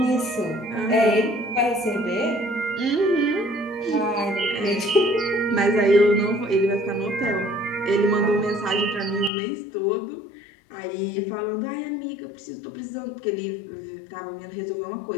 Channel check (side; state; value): right; drops out; at 9.3 s